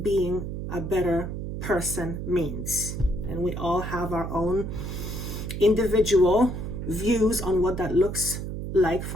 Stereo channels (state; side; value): noise; right; hum, 5 dB below the sound